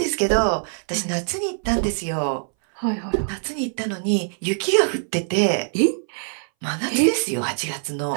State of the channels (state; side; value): silent; left; 62 dB below the other